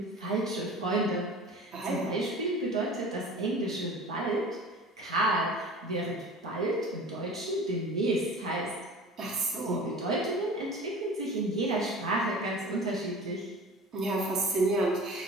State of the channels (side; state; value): both; normal; correlation 0.39